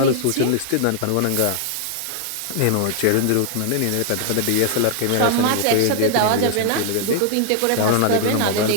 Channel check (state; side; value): different; both; correlation 0.00